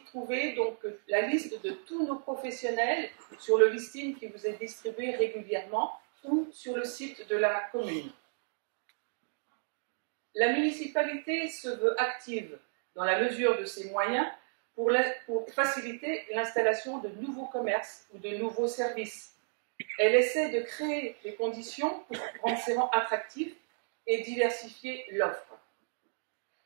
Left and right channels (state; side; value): silent; left; digital silence